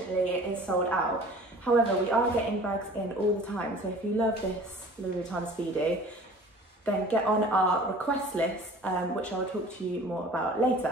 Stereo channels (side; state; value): both; normal; correlation 0.46